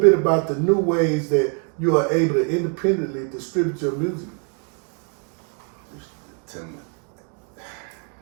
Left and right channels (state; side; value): quieter; left; 39.1 dB